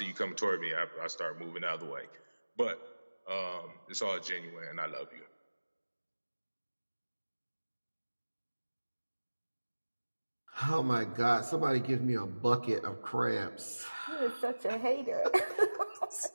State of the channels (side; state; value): both; inverted; correlation -1.00